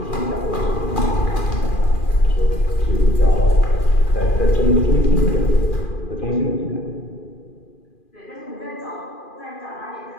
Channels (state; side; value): late; right; 2.4 ms